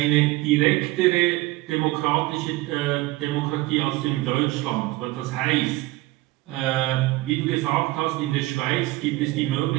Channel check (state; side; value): quieter; left; 19.3 dB